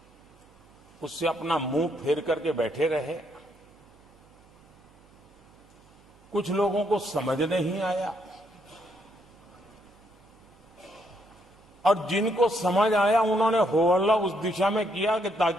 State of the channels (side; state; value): right; noise; hum, 29 dB below the sound